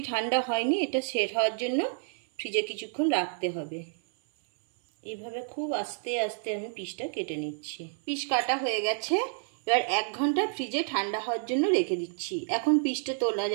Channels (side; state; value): left; silent; 58 dB below the other